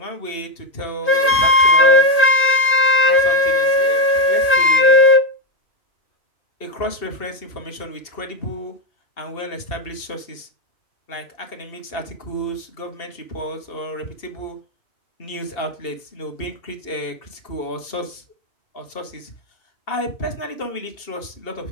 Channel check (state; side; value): late; right; 2.5 ms